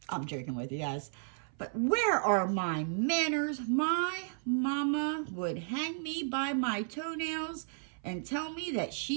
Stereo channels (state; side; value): silent; left; 55 dB below the other